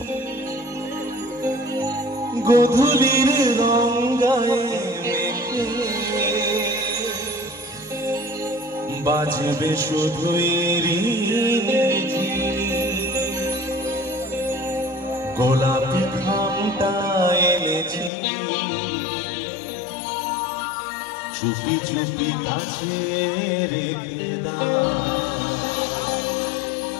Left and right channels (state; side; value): drops out; right; at 18.1 s